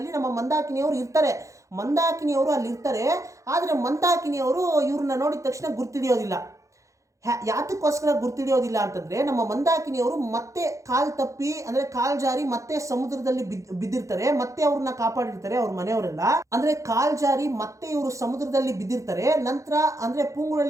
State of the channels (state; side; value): late; left; 0.15 ms